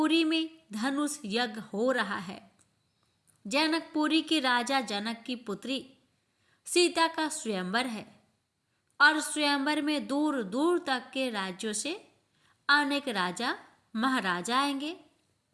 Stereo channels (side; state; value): both; identical; correlation 1.00